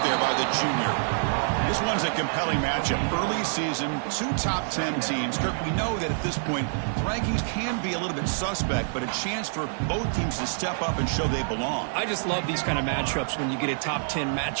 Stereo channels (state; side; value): silent; left; 60 dB below the other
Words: there by the junior. This one's a compelling matchup. Early season, 2 top 10 teams. Kirk, we know that at this point, rankings can be a little bit suspect, but a chance for both teams to step up and show they belong. I just love these kind of matchups when you get a top 10